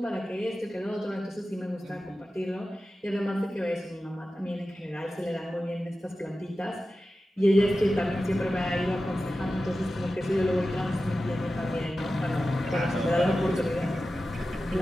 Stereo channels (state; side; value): normal; both; correlation 0.94